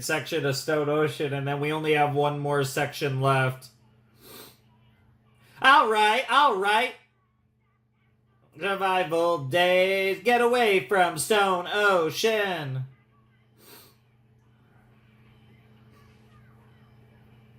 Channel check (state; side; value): identical; both; correlation 1.00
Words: section of Stone Ocean, and then we only have one more section left. Alright, alright. Survival days, get away from Stone Ocean.